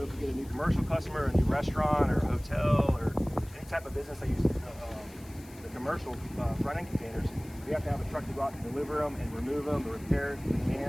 if we get a new commercial customer, a new restaurant or a hotel or any type of business that uses the commercial front end containers, we have to have a truck to go out and deliver them and remove them, to repair the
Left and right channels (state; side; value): noise; left; hiss, 22 dB below the sound